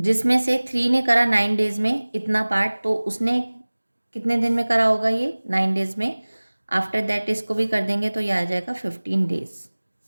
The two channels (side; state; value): both; inverted; correlation -1.00